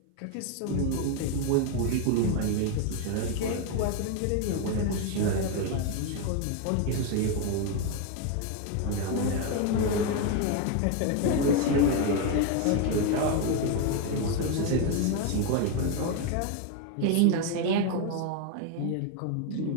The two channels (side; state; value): both; different; correlation 0.02